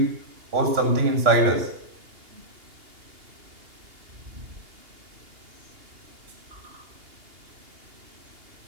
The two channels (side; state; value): left; late; 2.8 ms